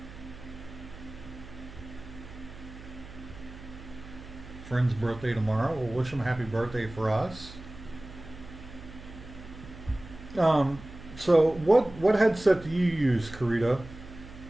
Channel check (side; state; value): right; noise; hum, 16 dB below the sound